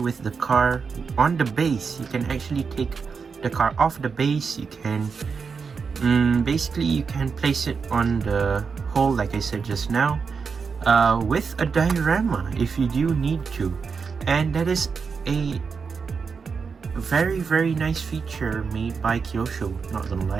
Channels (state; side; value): quieter; left; 5.5 dB